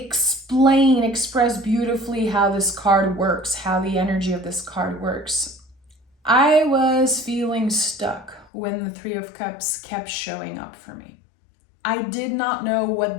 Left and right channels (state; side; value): drops out; right; at 8.5 s